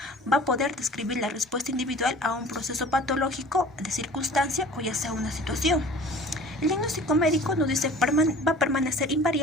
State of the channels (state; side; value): normal; both; correlation 0.45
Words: va a poder describir la respuesta individual a un proceso patológico de circunstancia o ya sea una situación. El diagnóstico médico nos dice va a permanecer